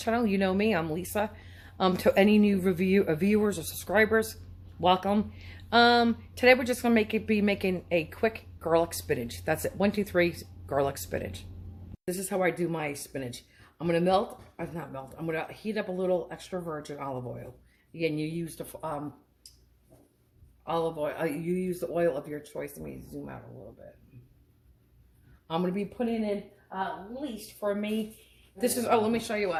You know me, I'm Lisa. To any new viewers or subscribers, welcome. Today we're just gonna be making a quick garlic spinach. That's it. 1, 2, 3 garlic spinach. This is how I do my spinach. I'm gonna I'm gonna heat up a little extra virgin olive oil. Again, you use the olive oil. You use the oil of your choice. Let me zoom out a little bit. I'm gonna be putting in at least for me. This is, let me show you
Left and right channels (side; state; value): both; identical; correlation 1.00